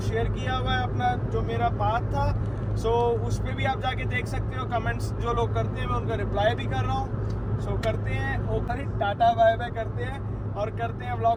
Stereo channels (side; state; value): both; identical; correlation 1.00